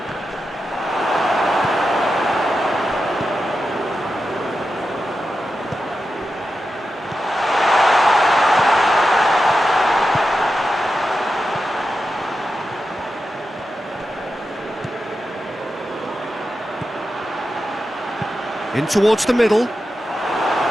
In towards the middle.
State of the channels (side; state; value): both; normal; correlation 0.90